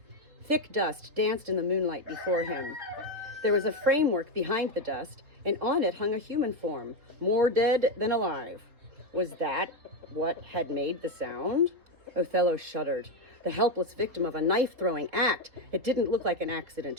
Thick dust danced in the moonlight before him. There was a framework behind the dust, and on it hung a human form, more dead than alive. Was that what had made the sound? Othello shuddered. The helpless victim of a knife-throwing act. It didn't look like an accident.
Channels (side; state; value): left; late; 3.7 ms